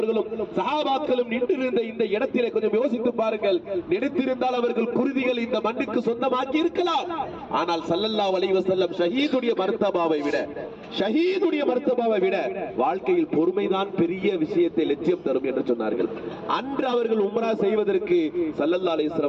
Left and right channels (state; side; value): identical; both; correlation 1.00